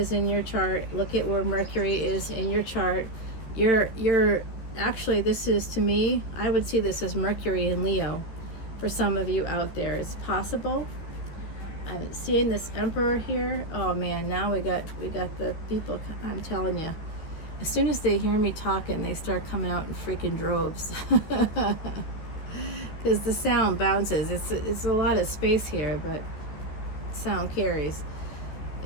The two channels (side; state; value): right; late; 13 ms